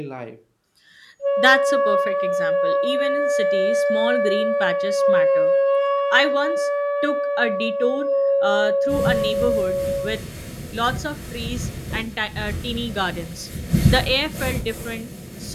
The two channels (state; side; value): identical; both; correlation 1.00